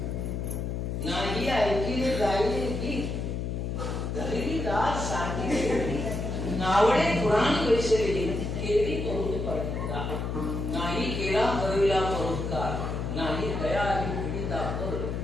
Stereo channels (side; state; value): left; noise; hum, 3 dB below the sound